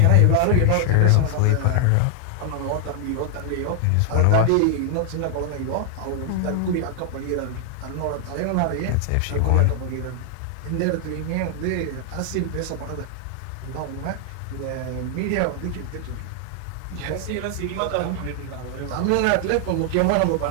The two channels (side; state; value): both; different; correlation 0.00